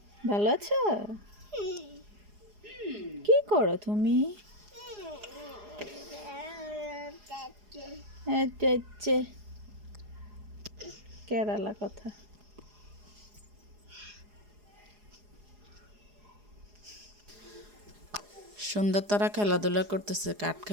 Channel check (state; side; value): late; left; 4.8 ms